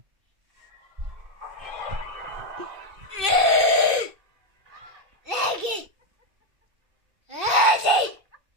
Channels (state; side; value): late; left; 2.6 ms